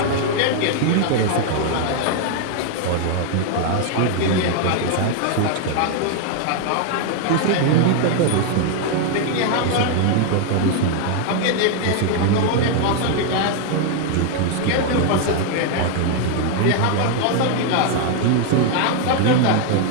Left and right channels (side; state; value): both; different; correlation 0.00